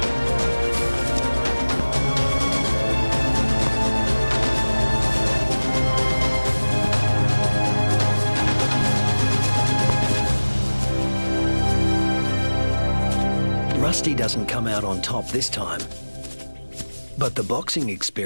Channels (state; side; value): inverted; both; correlation -1.00